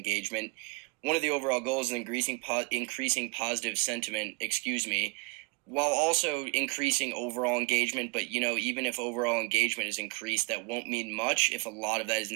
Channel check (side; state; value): left; quieter; 31.1 dB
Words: One of the overall goals is increasing positive sentiment, while also increasing overall engagement. But, even if overall engagement is increased, that won't mean much if a lot of that is